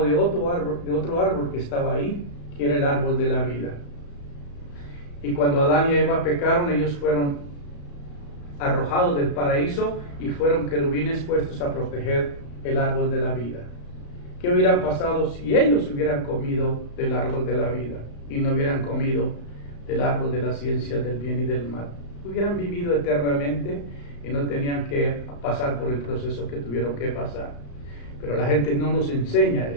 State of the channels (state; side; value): late; right; 35 ms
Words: de otro árbol que estaba ahí, que era el árbol de la vida. Y cuando Adán y Eva pecaron, ellos fueron arrojados del paraíso y fueron querubines puestos a proteger el árbol de la vida. ¿Qué hubieran pasado si ellos hubieran comido del árbol de la vida y no hubieran comido del árbol de la ciencia del bien y del mal? Hubieran vivido eternamente y no tenían que pasar por el proceso que tuvieron que pasar. Pero la gente no nos enseña